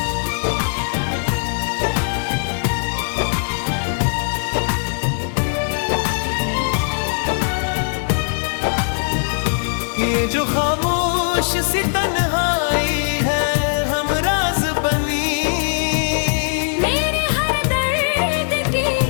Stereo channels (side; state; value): right; silent; digital silence